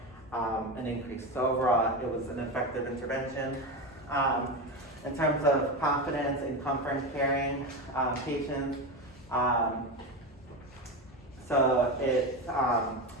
an increase. So overall, it was an effective intervention. In terms of confidence and comfort in caring patients, so it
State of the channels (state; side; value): normal; both; correlation 0.18